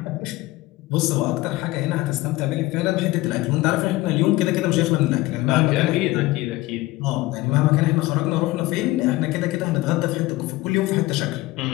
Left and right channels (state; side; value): quieter; right; 18.9 dB